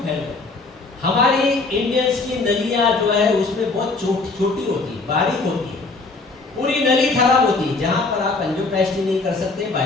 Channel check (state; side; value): quieter; right; 3.7 dB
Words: गई? हमारी इंडियंस की नलियां जो है उसमें बहुत छोटी होती है, बारीक होती है, पूरी नली खराब होती है, जहां पर आप एंजियोप्लास्टी नहीं कर सकते,